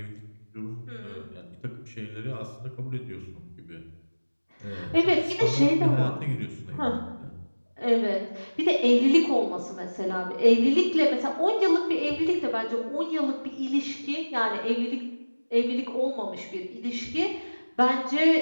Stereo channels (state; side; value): inverted; both; correlation -1.00